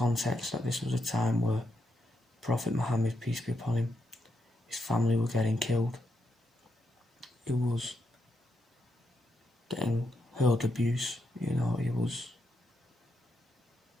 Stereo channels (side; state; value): both; normal; correlation 0.81